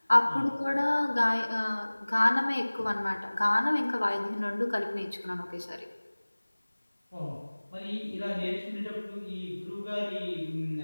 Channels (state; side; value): inverted; both; correlation -1.00